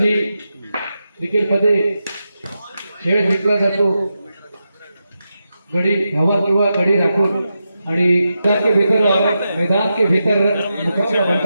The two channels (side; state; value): both; inverted; correlation -0.88